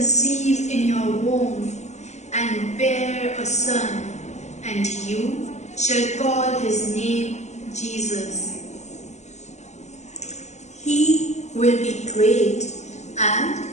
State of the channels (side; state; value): right; late; 0.33 ms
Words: in your womb and bear a son, and you shall call his name Jesus. He will be great and